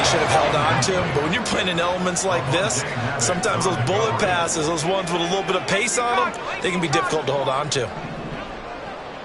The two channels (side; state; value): both; identical; correlation 1.00